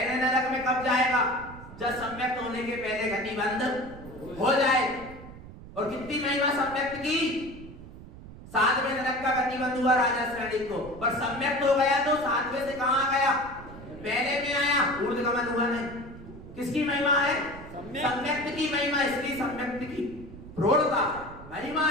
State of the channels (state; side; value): noise; right; rumble, 15 dB below the sound